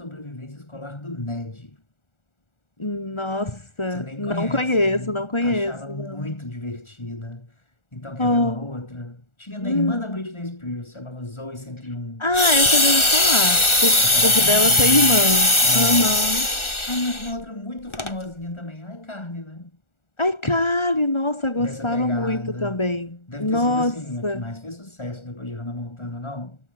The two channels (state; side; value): late; right; 1.4 ms